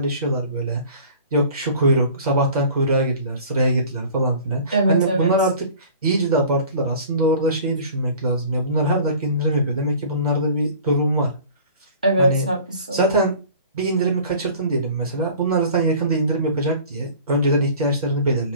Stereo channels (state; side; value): inverted; both; correlation -0.46